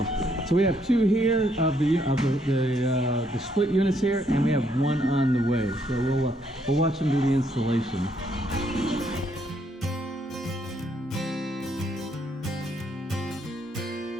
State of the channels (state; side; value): normal; both; correlation 0.71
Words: So we have 2 here of the split units here, and we have 1 on the way. So we'll watch them do the installation.